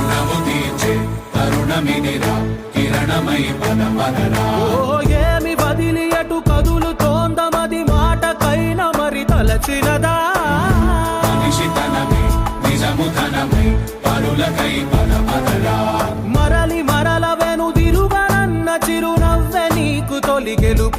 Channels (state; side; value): identical; both; correlation 1.00